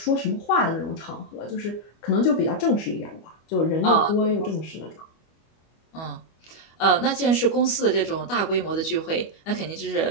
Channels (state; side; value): late; right; 25 ms